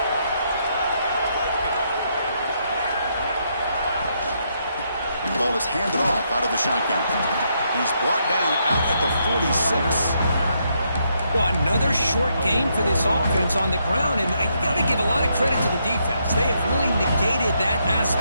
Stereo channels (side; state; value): both; inverted; correlation -0.77